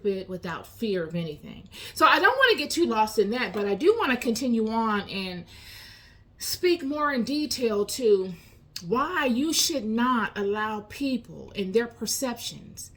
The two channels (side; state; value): both; identical; correlation 1.00